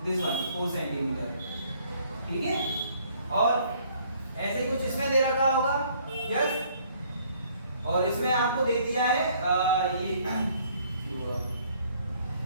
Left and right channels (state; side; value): inverted; both; correlation -0.61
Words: दिस वन 4 सेंटीमीटर। ठीक है? और ऐसे ही कुछ इसमें दे रखा होगा, यस। और इसमें आपको दे दिया है ये